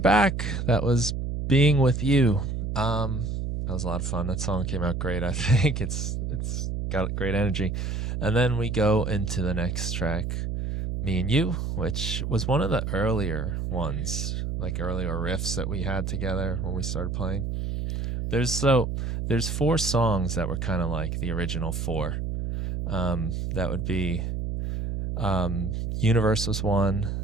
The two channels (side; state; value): right; noise; hum, 2 dB below the sound